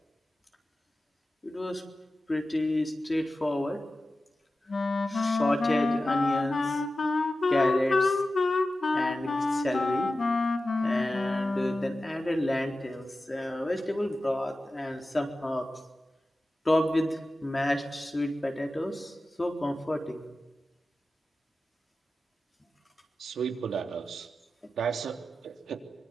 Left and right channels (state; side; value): normal; both; correlation 0.94